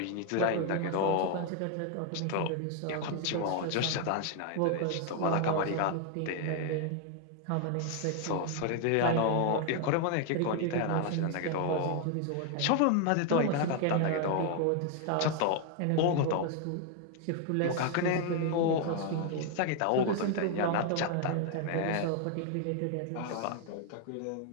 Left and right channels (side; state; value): both; different; correlation 0.00